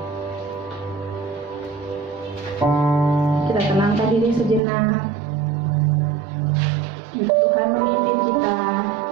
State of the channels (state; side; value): drops out; left; at 4.6 s